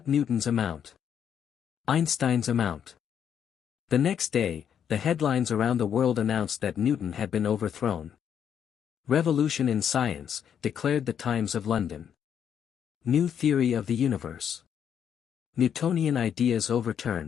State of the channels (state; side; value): quieter; right; 8.5 dB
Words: Newton's amount. Einstein's amount. The next day, the headlines around the world announced that Newton had been overthrown. Revolution in science, declared the Times of London. New theory of the universe. Newtonian ideas